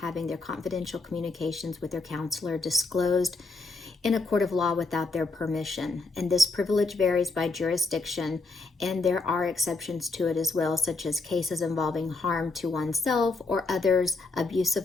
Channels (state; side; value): quieter; right; 3.6 dB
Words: their confidential communications with their counselor disclosed in a court of law without their permission. And this privilege varies by jurisdiction, and there are exceptions to it as well, such as cases involving harm to oneself or others, abuse